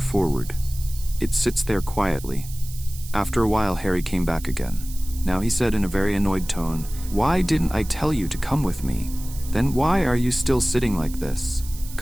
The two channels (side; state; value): right; noise; hiss, 16 dB below the sound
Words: forward. It sits there quietly. After a while, Harry came back again. Now he said in a very annoyed tone, "Why didn't I tell you to come with me? Then why are you still sitting like this?